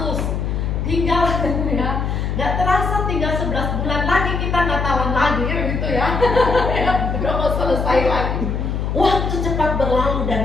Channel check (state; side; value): noise; left; hum, 1 dB below the sound